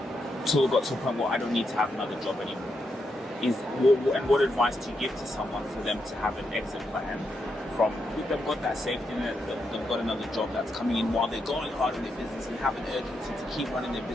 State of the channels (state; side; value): normal; both; correlation 0.82